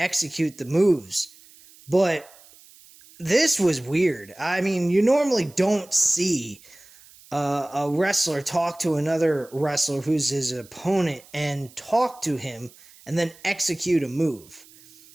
the moves. But this was weird. I mean, you normally don't see a wrestler talk to another wrestler who's his opponent and talk to him and then execute a move.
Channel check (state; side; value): noise; right; hiss, 24 dB below the sound